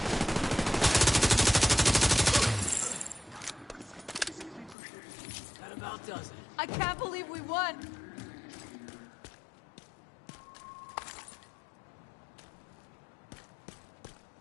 I can't believe we won!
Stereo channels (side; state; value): right; drops out; at 4.8 s